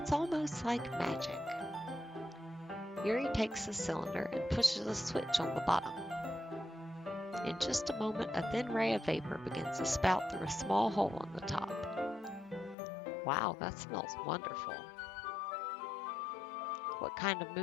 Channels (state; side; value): drops out; right; at 12.8 s